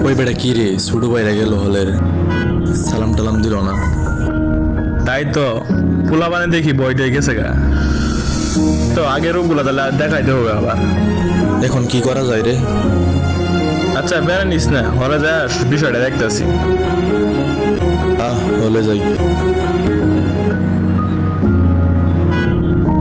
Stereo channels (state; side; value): identical; both; correlation 1.00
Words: ওই বেটা কি রে, ছোট ভাইরা গেল হলের, সালাম টালাম দিল না। তাই তো পোলা বানে দেখি বইটাই গেছে গা। তো আগের ওগুলা তাহলে দেখাইতে হবে আবার। এখন কি করা যায় রে? আচ্ছা বেড়া নিস না, হলে যা বিষয়টা দেখতেছি। হলে যাই।